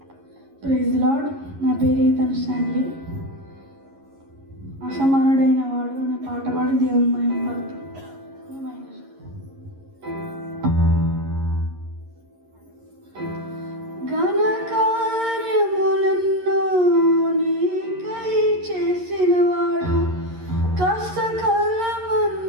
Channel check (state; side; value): late; left; 11 ms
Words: Praise lord. నా పేరు ఈతన్ స్టాన్లీ. అసమానుడైన వాడు అనే పాట పాడి దేవుని మహిమపడుతుంది. ఘన కార్యములెన్నో నీకై చేసిన వాడు, కష్టకాలమందుని